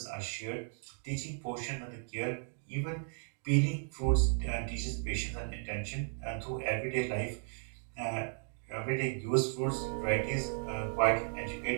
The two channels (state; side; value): silent; left; 54 dB below the other